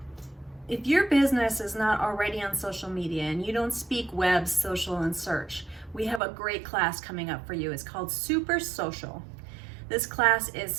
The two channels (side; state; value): left; drops out; at 6.2 s